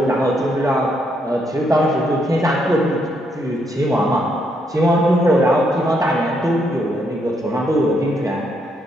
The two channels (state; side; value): normal; both; correlation 0.75